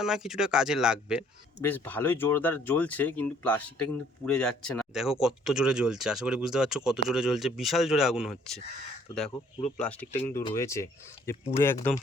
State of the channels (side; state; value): both; normal; correlation 0.61